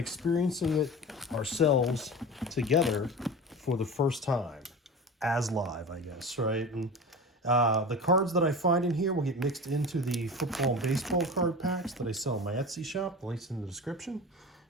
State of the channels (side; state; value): both; normal; correlation 0.32